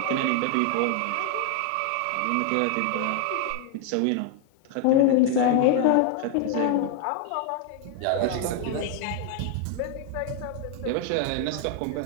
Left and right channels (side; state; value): both; different; correlation 0.00